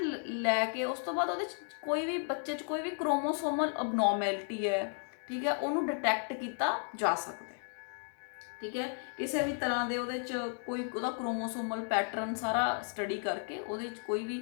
ਲੈ ਕੇ ਉਸ ਤੋਂ ਬਾਅਦ ਉਹਦੇ 'ਚ ਕੋਈ ਵੀ ਬੱਚੇ 'ਚ ਕੋਈ ਵੀ ਕ੍ਰੋਮੋਸੋਮਲ ਅਬਨੋਰਮੈਲਿਟੀ ਹੈ, ਠੀਕ ਹੈ, ਉਹਨੂੰ ਡਿਟੈਕਟ ਕੀਤਾ ਜਾ ਸਕਦਾ, ਠੀਕ ਹੈ। ਕਿਸੇ ਵੀ ਤਰ੍ਹਾਂ ਦੇ ਉਹਦੇ 'ਚ ਕੋਈ ਉਹਦਾ ਕ੍ਰੋਮੋਸੋਮਲ ਪੈਟਰਨ ਸਾਰਾ ਸਟੱਡੀ ਕਰਕੇ ਉਹਦੇ 'ਚ ਕੋਈ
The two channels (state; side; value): silent; right; 55 dB below the other